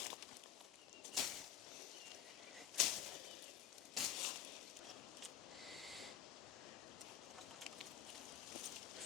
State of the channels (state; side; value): quieter; right; 10.7 dB